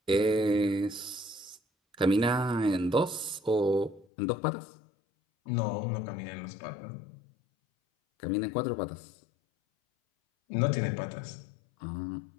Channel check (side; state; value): right; drops out; at 4.0 s